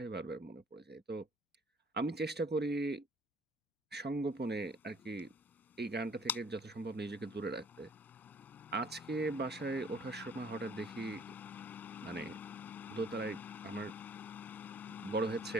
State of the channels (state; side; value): normal; both; correlation 0.57